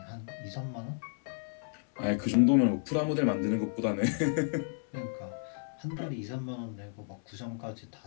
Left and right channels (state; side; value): silent; right; 56 dB below the other